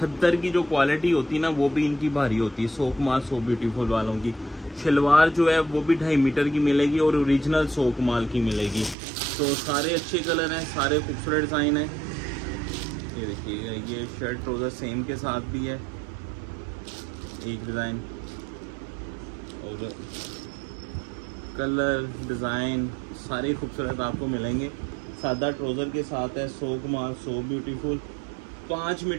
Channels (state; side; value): drops out; left; at 9.0 s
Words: की जो क्वालिटी होती है ना, वो भी इनकी भारी होती है। सो कमाल सो ब्यूटीफुल वालों की शलवार जो है वो भी 2.5 मीटर की मिलेगी और ओरिजिनल सो कमाल की मिलेगी। तो सारे अच्छे कलर हैं, सारे खूबसूरत डिज़ाइन हैं। ये देखिएगा, ये शर्ट ट्राउज़र सेम के साथ भी है एक डिज़ाइन, और कलर डिज़ाइन सारे खूबसूरत आपको मिलेंगे। सादा ट्राउज़र के साथ है। सो कमाल, सो ब्यूटीफुल। 5